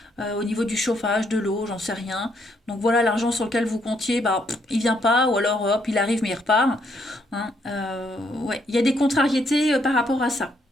au niveau du chauffage, de l'eau, j'en sais rien. Donc voilà, l'argent sur lequel vous comptiez, il vient pas, ou alors hop, il arrive mais il repart. Hein. Ouais, il y a des contrariétés par rapport à ça.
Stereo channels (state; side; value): normal; both; correlation 0.73